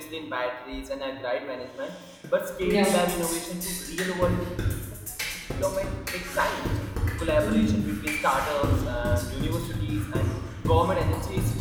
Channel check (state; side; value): identical; both; correlation 1.00